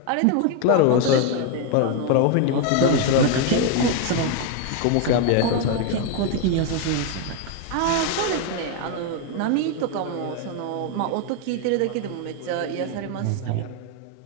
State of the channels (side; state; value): both; different; correlation 0.01